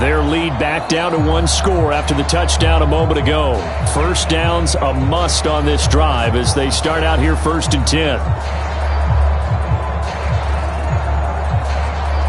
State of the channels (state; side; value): identical; both; correlation 1.00